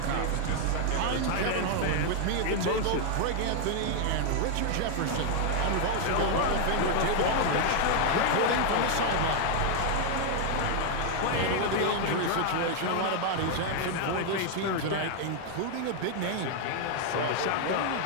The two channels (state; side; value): different; both; correlation 0.00